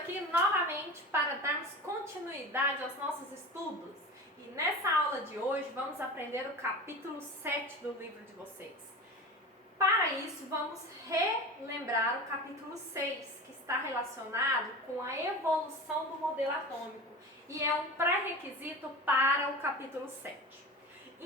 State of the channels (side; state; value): both; normal; correlation 0.31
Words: novamente para darmos continuidade aos nossos estudos. E nessa aula de hoje vamos aprender o capítulo 7 do livro de vocês. Para isso, vamos relembrar o capítulo 6, que está relacionado com a evolução do modelo atômico e é um pré-requisito para o capítulo 7.